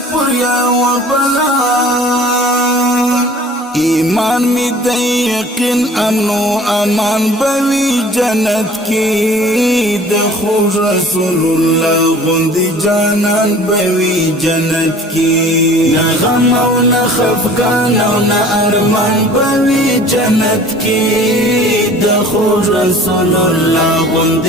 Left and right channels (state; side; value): normal; both; correlation 0.48